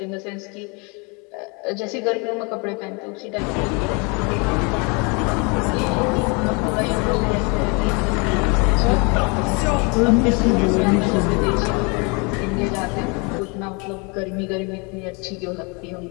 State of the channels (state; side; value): quieter; right; 31.3 dB